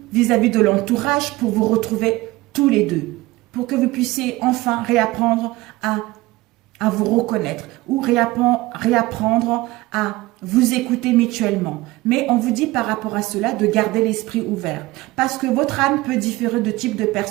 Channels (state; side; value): quieter; left; 19.5 dB